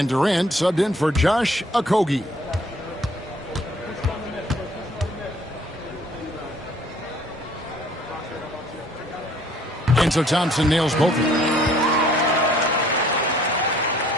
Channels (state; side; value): normal; both; correlation 0.59